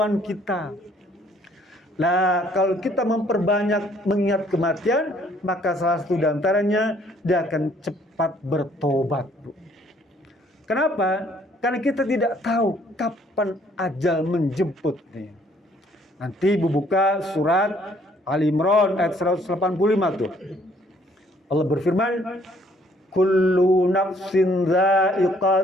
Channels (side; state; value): both; normal; correlation 0.63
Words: kita. Nah, kalau kita memperbanyak mengingat kematian, maka salah satu diantaranya dia akan cepat bertobat, Bu. Kenapa? Karena kita tidak tahu kapan ajal menjemput. Nanti Ibu buka surat Ali Imran ayat 185 tuh. Allah berfirman, kullu nafsin